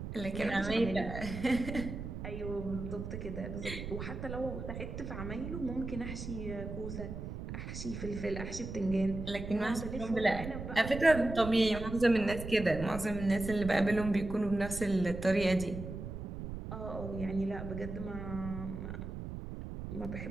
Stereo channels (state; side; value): noise; right; rumble, 7 dB below the sound